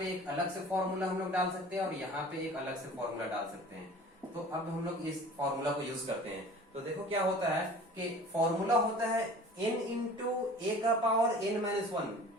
एक अलग से फॉर्मूला हम लोग डाल सकते हैं, और यहाँ पे एक अलग से फॉर्मूला डाल सकते हैं। तो अब हम लोग इस फॉर्मूला को यूज करते हैं। तो देखो क्या होता है कि फॉर्मूला होता है n इंटू a का पावर n-1।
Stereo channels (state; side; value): normal; both; correlation 0.44